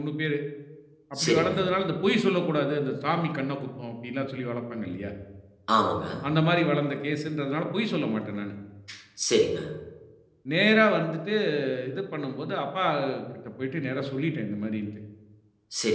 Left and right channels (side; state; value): both; identical; correlation 1.00